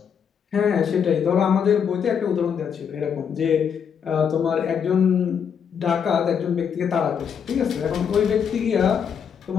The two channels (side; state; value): right; quieter; 7.4 dB